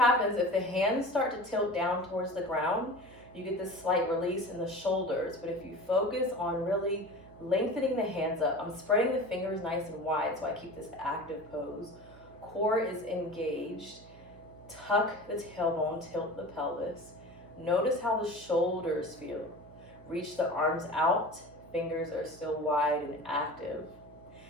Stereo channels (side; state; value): right; noise; hum, 21 dB below the sound